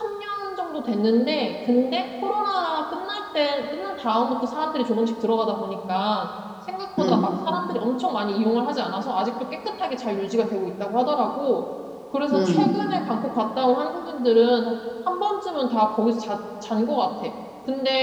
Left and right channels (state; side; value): identical; both; correlation 1.00